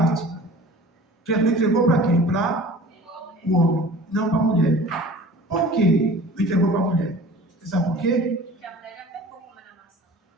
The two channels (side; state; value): both; normal; correlation 0.43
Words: Jesus entregou para quem? Para o homem, não para a mulher. Por que não entregou para a mulher? Você sabe por quê? Porque a mulher já pecou com a maçã.